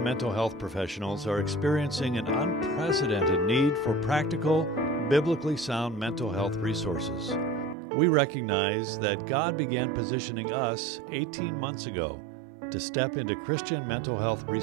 mental health professionals are experiencing an unprecedented need for practical, biblically sound mental health resources. We recognize that God began positioning us 18 months ago to step into Christian mental health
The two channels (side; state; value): left; drops out; at 7.8 s